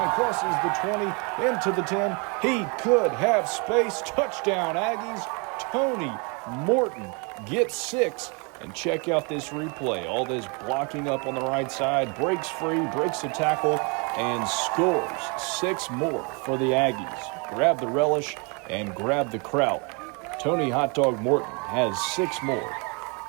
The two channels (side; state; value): left; quieter; 32.9 dB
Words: crosses the 20, into the 10. He could have space. Touchdown, Aggies. Tony Morton gets 6. And check out this replay. All this blocking up on the right side, breaks free, breaks the tackle, and scores 6 more for the Aggies. Grab the relish and grab the kraut. Tony Hot Dog Morton has 6 more.